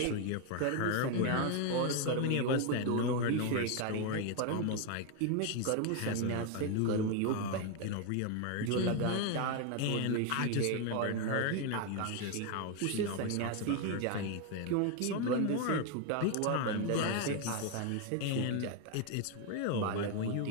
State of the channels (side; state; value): both; different; correlation 0.01